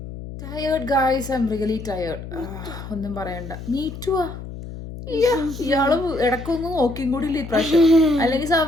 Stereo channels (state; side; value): noise; left; hum, 11 dB below the sound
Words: Tired guys, I am really tired. ഒന്നും പറയണ്ട. മീറ്റുവാ ഇയാള് ഇടക്കൊന്നും നോക്കിയും കൂടി ഇല്ല ഇപ്രാവശ്യം. അല്ലെങ്കിൽ